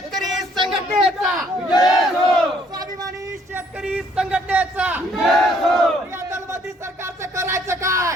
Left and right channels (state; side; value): normal; both; correlation 0.64